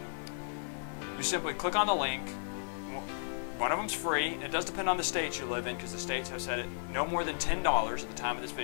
You simply click on the link. One of them's free. It does depend on the states you live in, because the states have said it no more than $10 at the time of this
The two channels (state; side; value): silent; right; 55 dB below the other